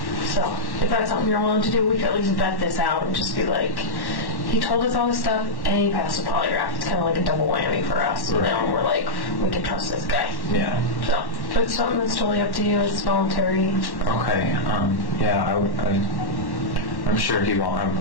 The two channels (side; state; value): right; late; 1.1 ms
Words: So if that's something you're willing to do, we could at least vet this out and just be like, he told us all this stuff and he passed the polygraph. It's kind of like a double whammy for us. You know, and we're like, we can trust this guy. Yeah. So it's something that's totally up to you. It's voluntary. Okay. Yeah, I'm sure he won't.